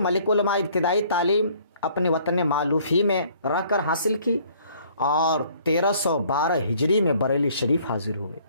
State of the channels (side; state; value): both; inverted; correlation -0.59